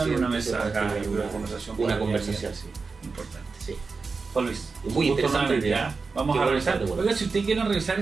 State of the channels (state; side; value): quieter; left; 4.5 dB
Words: una mesa acá, una conversación, sí, importante. Sí. Juan Luis, muy interesante idea. Vamos a revisar. Oiga, si usted quiere revisar